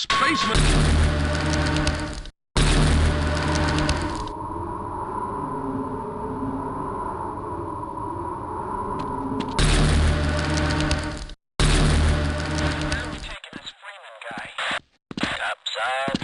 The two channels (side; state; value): both; identical; correlation 1.00